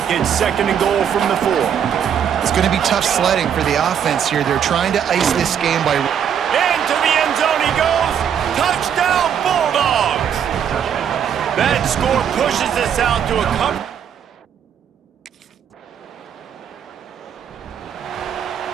it's 2nd and goal from the 4. It's going to be tough sledding for the offense here. They're trying to ice this game by... Into the end zone he goes. Touchdown, Bulldogs. That score pushes us out to a couple.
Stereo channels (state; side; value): quieter; left; 8.5 dB